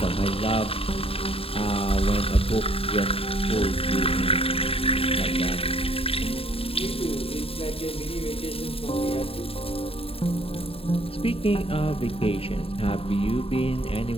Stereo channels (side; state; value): right; late; 0.27 ms